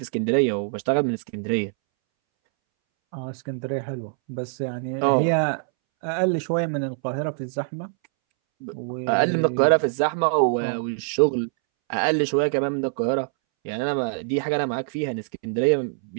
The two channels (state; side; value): silent; left; 62 dB below the other